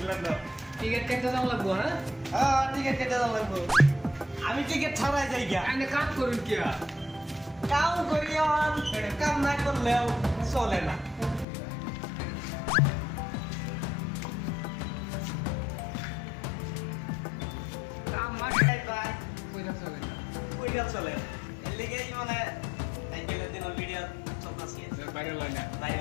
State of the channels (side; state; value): right; drops out; at 11.5 s